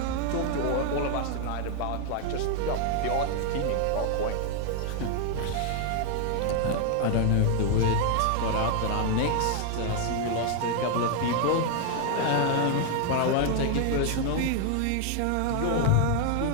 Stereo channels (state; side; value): different; both; correlation 0.00